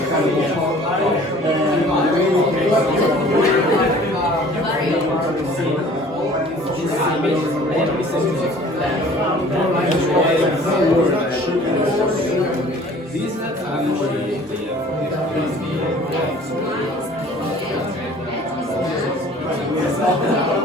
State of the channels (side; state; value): both; normal; correlation 0.50